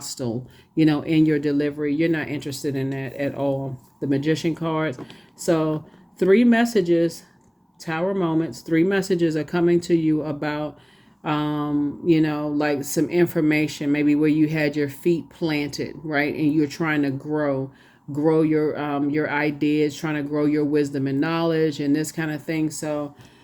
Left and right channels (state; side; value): identical; both; correlation 1.00